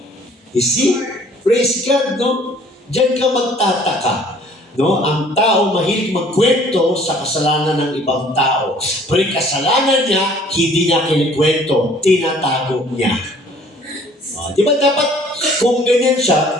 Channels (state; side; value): normal; both; correlation 0.55